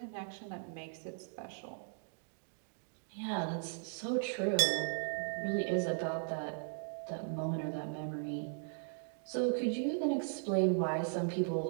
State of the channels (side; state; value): left; silent; digital silence